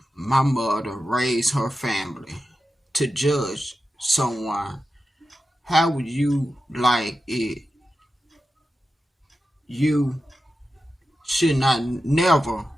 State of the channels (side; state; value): both; normal; correlation 0.91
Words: my mother raised her family to judge someone. How would you like it? You should not never